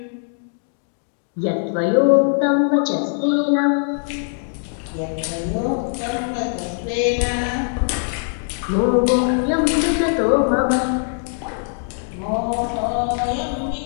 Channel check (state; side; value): silent; right; 62 dB below the other